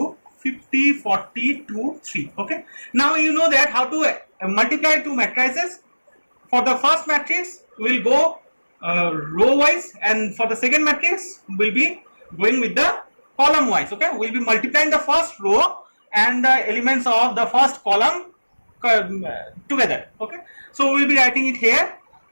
50, 40, 2, 3. Okay. Now you know that how to multiply two matrices. For the first matrix, we will go row wise, and for the second matrix, we will be going with the column wise. Okay. We will be multiplying the first row and the elements of the first column together. Okay. So we will be writing it here,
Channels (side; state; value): both; inverted; correlation -1.00